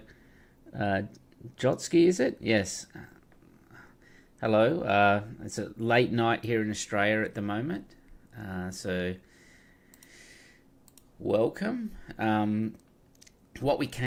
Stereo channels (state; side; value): identical; both; correlation 1.00